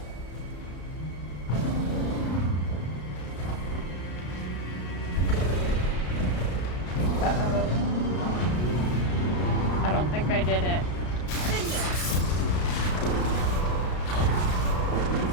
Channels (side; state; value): right; late; 33 ms